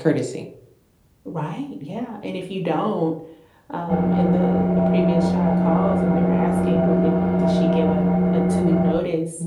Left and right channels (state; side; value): identical; both; correlation 1.00